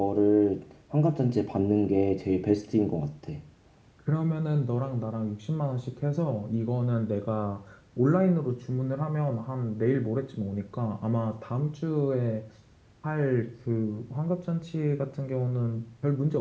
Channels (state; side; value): identical; both; correlation 1.00